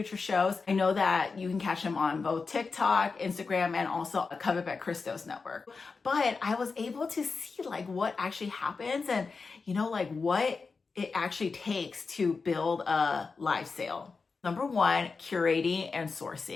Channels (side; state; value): right; quieter; 4.6 dB